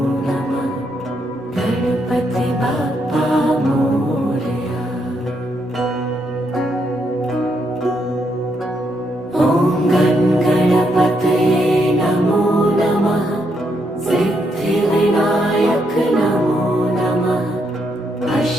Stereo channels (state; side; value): normal; both; correlation 0.77